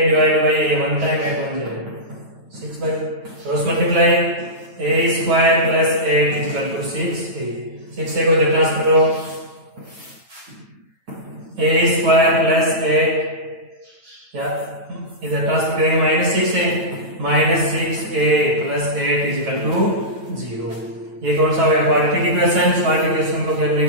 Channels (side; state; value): left; late; 9.1 ms